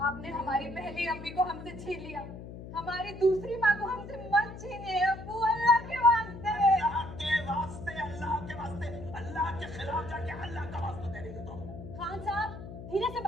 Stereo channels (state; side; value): noise; left; hum, 12 dB below the sound